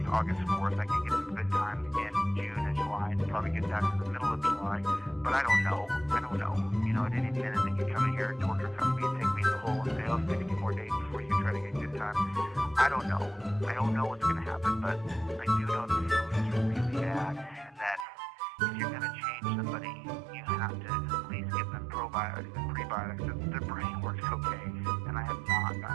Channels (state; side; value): drops out; left; at 18.1 s